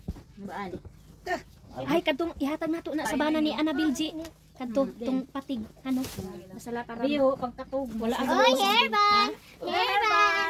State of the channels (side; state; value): both; identical; correlation 1.00